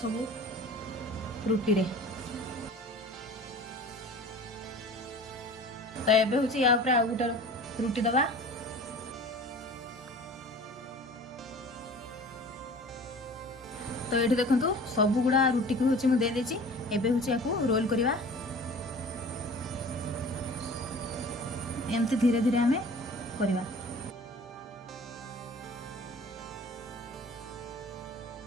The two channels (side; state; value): both; normal; correlation 0.43